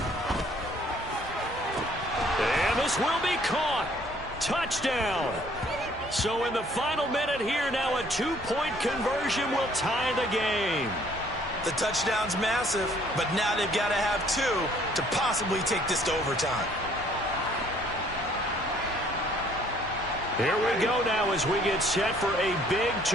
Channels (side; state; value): both; normal; correlation 0.60